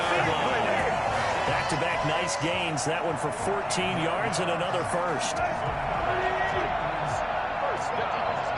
line. Back-to-back nice gains. That one for 14 yards and another first.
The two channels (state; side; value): identical; both; correlation 1.00